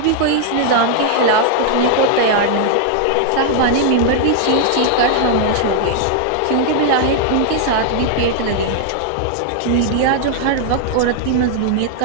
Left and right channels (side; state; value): both; different; correlation 0.00